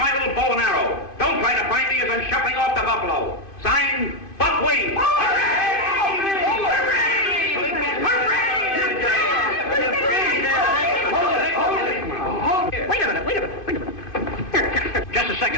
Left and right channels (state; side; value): late; right; 2.5 ms